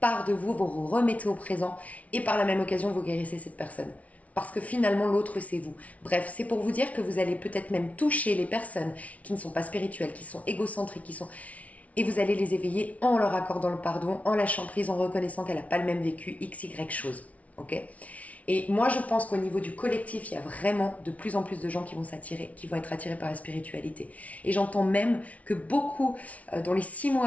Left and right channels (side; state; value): right; late; 0.068 ms